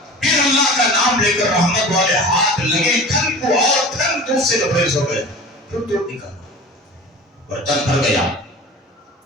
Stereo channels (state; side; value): normal; both; correlation 0.37